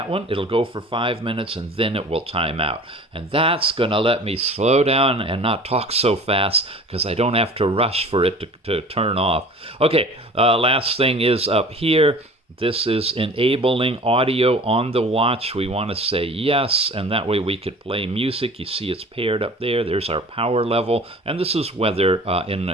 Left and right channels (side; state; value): both; normal; correlation 0.43